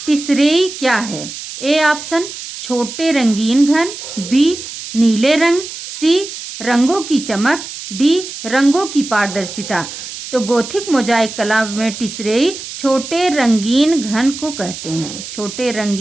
टिसरेई क्या है? ए ऑप्शन छोटे रंगीन घन, बी नीले रंग, सी रंगों की चमक, डी रंगों की पारदर्शिता। तो गोथिक मोजाइक कला में टिसरेई छोटे रंगीन घन को कहते हैं, छोटे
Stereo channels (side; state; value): right; noise; hiss, 10 dB below the sound